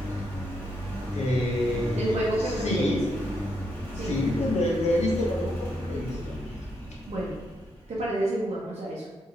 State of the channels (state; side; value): normal; both; correlation 0.79